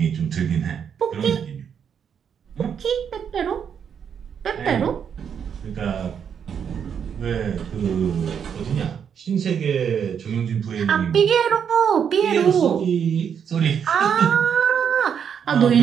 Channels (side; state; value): left; quieter; 7.7 dB